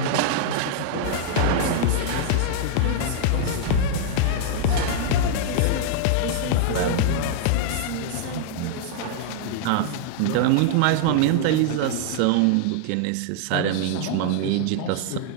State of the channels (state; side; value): different; both; correlation -0.01